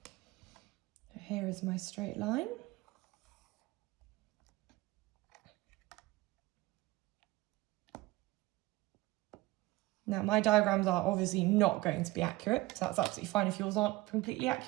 So here is my straight line. Now my diagrams are obviously not going to be accurate, so that's absolutely fine if yours aren't completely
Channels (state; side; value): quieter; left; 19.5 dB